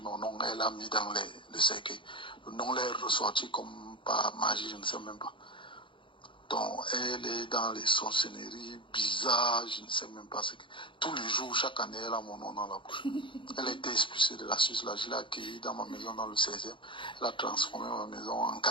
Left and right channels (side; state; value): right; late; 0.24 ms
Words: mon nom, elle a mis dans le cercueil. Le nom là est ressorti comme par magie, je ne sais même pas. Donc, elle est dans les sorcelleries bizarres, je ne sais même pas ce que... Tous les jours, chaque année, elle a mon nom dans la bouche. Elle a été expulsée de la Suisse, là, je l'ai accueillie dans ma maison dans le 16e. Elle a transformé ma maison en